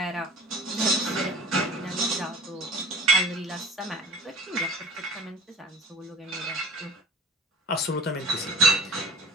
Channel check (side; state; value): both; normal; correlation 0.41